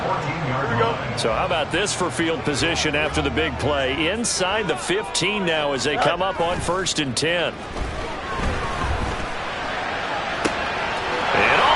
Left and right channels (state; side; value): identical; both; correlation 1.00